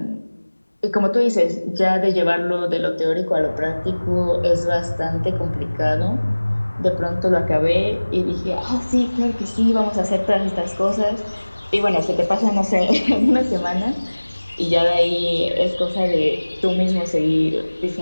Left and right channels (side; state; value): both; inverted; correlation -1.00